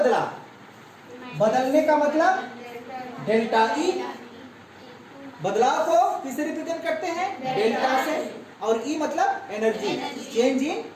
बदलने का मतलब डेल्टा ई, बदलाव को किससे रिप्रेजेंट करते हैं, डेल्टा से, और ई मतलब एनर्जी, चेंज इन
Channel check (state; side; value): identical; both; correlation 1.00